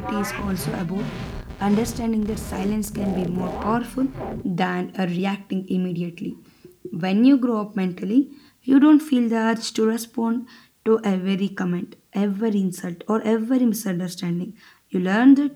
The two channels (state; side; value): identical; both; correlation 1.00